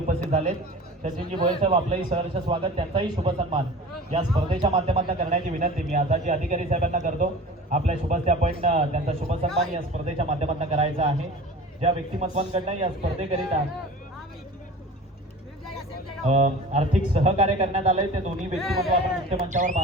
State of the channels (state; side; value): normal; both; correlation 0.38